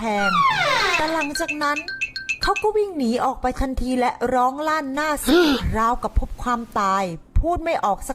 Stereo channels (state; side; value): identical; both; correlation 1.00